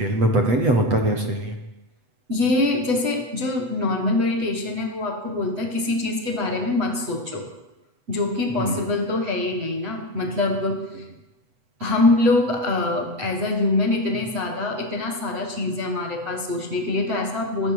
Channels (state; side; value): late; left; 8.1 ms